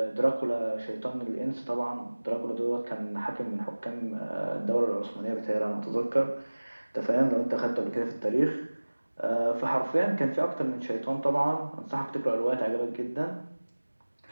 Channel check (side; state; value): both; inverted; correlation -1.00